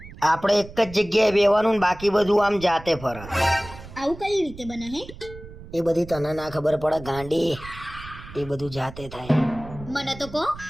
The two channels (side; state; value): right; noise; rumble, 16 dB below the sound